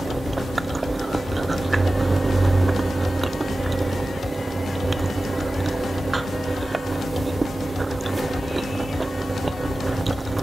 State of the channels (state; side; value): normal; both; correlation 0.95